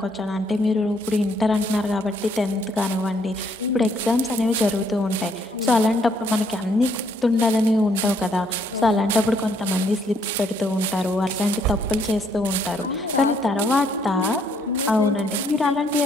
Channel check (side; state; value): both; normal; correlation 0.68